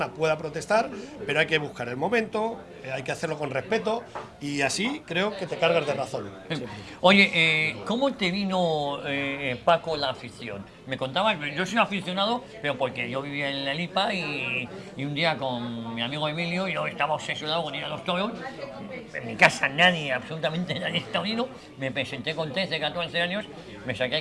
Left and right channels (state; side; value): identical; both; correlation 1.00